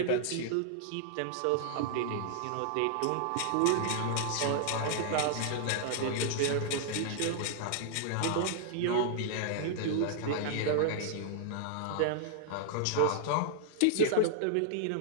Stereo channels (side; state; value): both; different; correlation -0.01